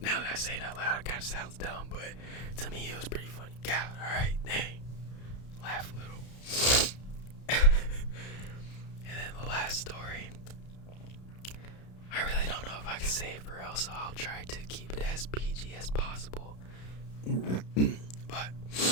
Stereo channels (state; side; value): late; right; 32 ms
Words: Now that I say it out loud, it kind of sounds dumb, but to me it was pretty funny. God, alright, dang. Laugh a little. And then the last story, I really don't know if I can say it for real, so I'll try to keep it as PG as possible. But